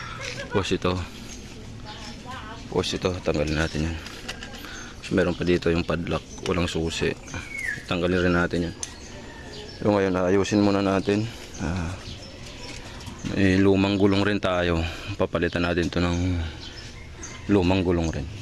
tapos ito tanggalin natin yan. So meron pa dito yung padlock, walang susi, tanggalin rin natin yan. So ngayon ayusin muna natin. May lumang gulong rin tayo, papalitan natin to ng lumang gulong rin.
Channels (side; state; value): both; identical; correlation 1.00